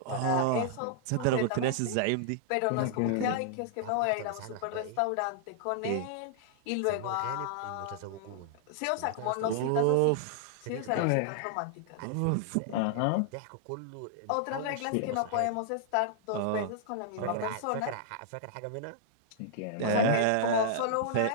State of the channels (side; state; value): both; different; correlation -0.01